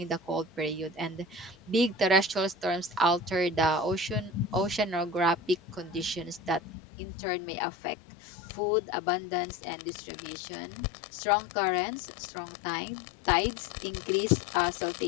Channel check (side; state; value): right; drops out; at 6.6 s